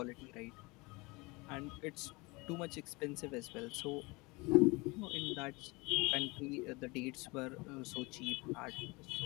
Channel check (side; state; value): right; quieter; 25.4 dB